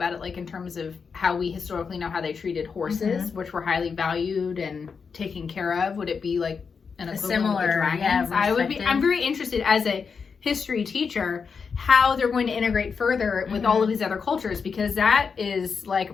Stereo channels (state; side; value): quieter; right; 5.7 dB